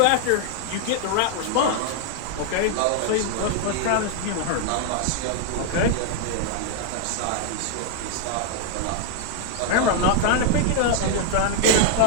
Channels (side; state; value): both; different; correlation 0.00